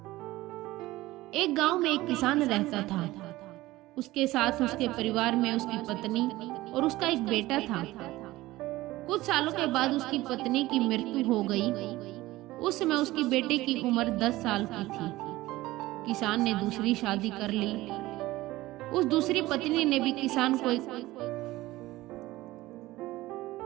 एक गांव में एक किसान रहता था। उसके साथ उसके परिवार में उसकी पत्नी और उसका एक बेटा था। कुछ सालों के बाद उसकी पत्नी की मृत्यु हो गई। उस समय उसकी बेटे की उम्र 10 साल की थी। किसान ने दूसरी शादी कर ली। उस दूसरी पत्नी ने भी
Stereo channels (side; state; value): left; quieter; 17.8 dB